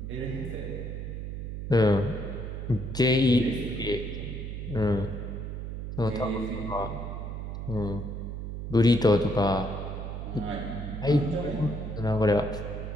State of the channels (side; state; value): right; noise; hum, 6 dB below the sound